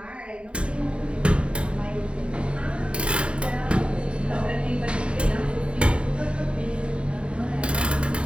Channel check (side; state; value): left; late; 0.056 ms